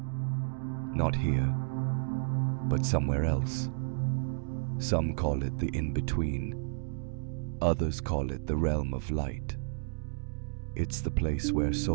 Not here, but somewhere else. Some call it the in-between. Others call it the realm of light. It's the place where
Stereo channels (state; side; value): silent; left; digital silence